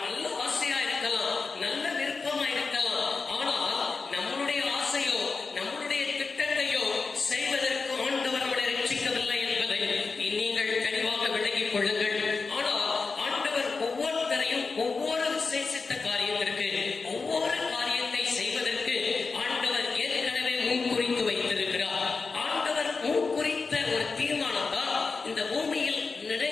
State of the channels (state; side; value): quieter; right; 4.4 dB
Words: நல்ல ஆசையா இருக்கலாம், நல்ல விருப்பமா இருக்கலாம். ஆனால் நம்மளுடைய ஆசையோ நம்மளுடைய திட்டத்தையோ செய்வதற்கு ஆண்டவர் நம்மளை ரட்சிக்கவில்லை என்பதை நீங்கள் தெளிவாக விளங்கிக் கொள்ளுங்கள். ஆனால் ஆண்டவர் ஒவ்வொருத்தரையும் ஒவ்வொரு விசேஷித்த காரியத்திற்கு, ஒவ்வொரு காரியத்தை செய்வதற்கு ஆண்டவர் ஏற்கனவே முன்குறித்து வைத்திருக்கிறார். ஆண்டவர் முன்குறித்த ஒரு தீர்மானத்தால் இந்த பூமியில்